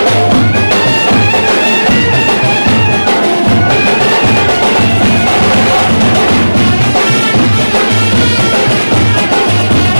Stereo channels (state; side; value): inverted; both; correlation -1.00